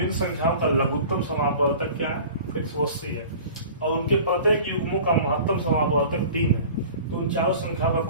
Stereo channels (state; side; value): inverted; both; correlation -0.42